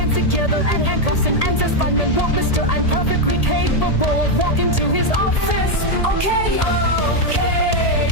together and handcuffs him and says, fine and walk, mister. I'm perfectly capable of walking to his office. Okay,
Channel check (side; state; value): right; late; 1.8 ms